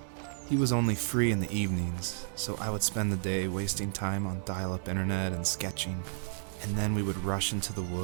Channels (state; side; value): silent; left; digital silence